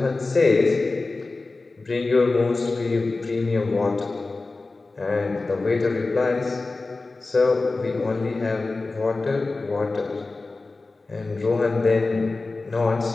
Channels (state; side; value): quieter; right; 3.5 dB